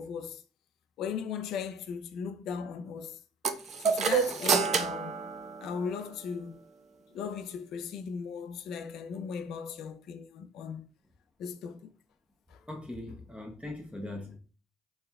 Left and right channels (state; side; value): normal; both; correlation 0.48